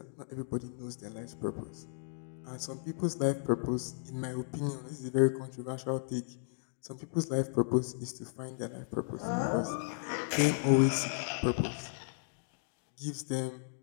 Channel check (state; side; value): silent; right; digital silence